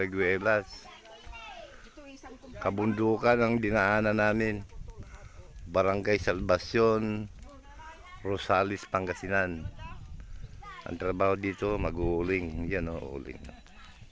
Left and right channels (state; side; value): identical; both; correlation 1.00